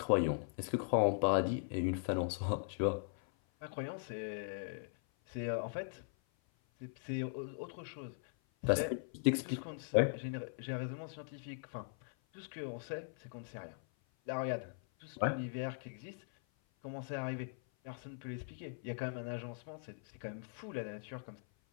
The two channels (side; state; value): right; silent; 51 dB below the other